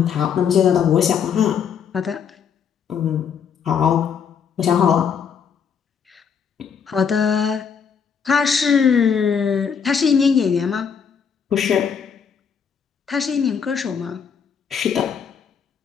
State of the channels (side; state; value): right; quieter; 7.0 dB